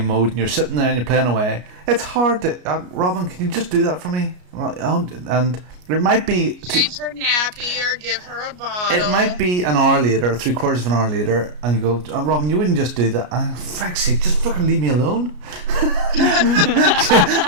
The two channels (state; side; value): late; left; 33 ms